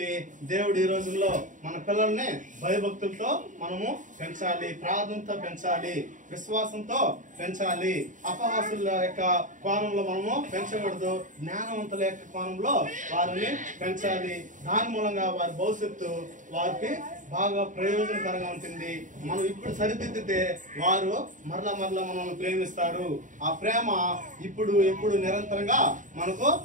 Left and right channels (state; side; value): late; left; 0.37 ms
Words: దేవుడు ఈ రోజుల్లో మన పిల్లల్ని భయభక్తులతో మనము పెంచాలి, ప్రార్థనతో పెంచాలి, విశ్వాసంతో పెంచాలి. అపహాసుల యొక్క కోణంలో మనము పెంచకూడదు, జ్ఞానవంతుల యొక్క కోణంలో వారిని పెంచాలి. దాని మూలంగా వారి భవిష్యత్తు వారికి బాగా ప్రయోజనకరంగా ఉంటుంది. మనం ఇప్పుడు సరిదిద్దితే వారు మరలా మనల్ని ప్రేమిస్తారు. ఆ ప్రేమ ఇప్పుడు ఎప్పుడు నిరంతరంగా మనకు